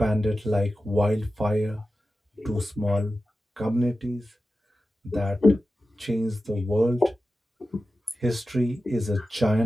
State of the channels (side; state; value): both; normal; correlation 0.93